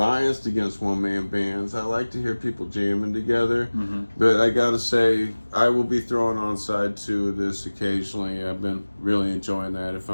against one man bands. I like to hear people jamming together, but I gotta say I will be throwing on side two of this occasionally. I've been really enjoying that if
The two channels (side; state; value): both; inverted; correlation -1.00